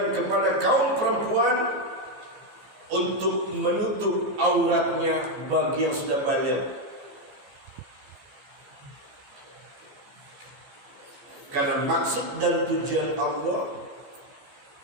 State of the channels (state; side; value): late; left; 15 ms